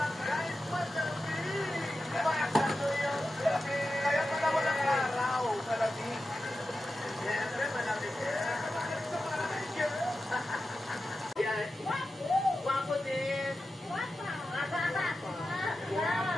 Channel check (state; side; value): normal; both; correlation 0.92